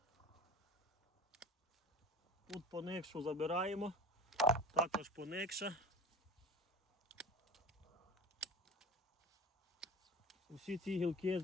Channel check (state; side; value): normal; both; correlation 0.37